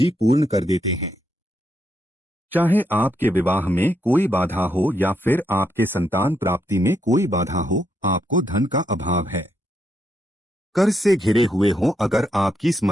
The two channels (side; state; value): both; normal; correlation 0.79